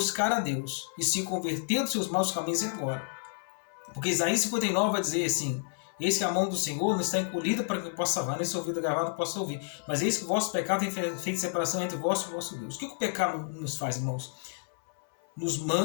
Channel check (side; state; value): right; silent; 58 dB below the other